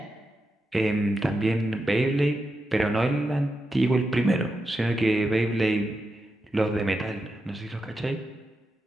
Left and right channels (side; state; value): both; normal; correlation 0.88